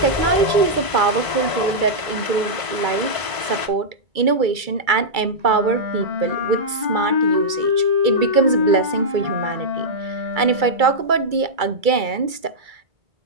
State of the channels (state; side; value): late; left; 2.3 ms